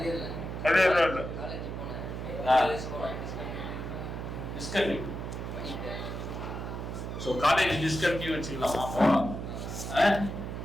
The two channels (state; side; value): noise; right; hum, 6 dB below the sound